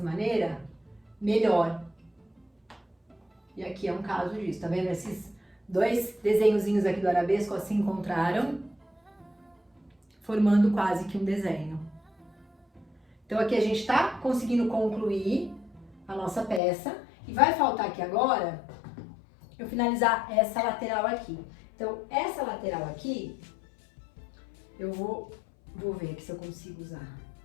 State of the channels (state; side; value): drops out; right; at 16.6 s